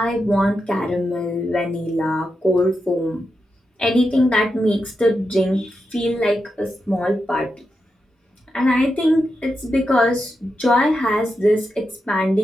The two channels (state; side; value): normal; both; correlation 0.87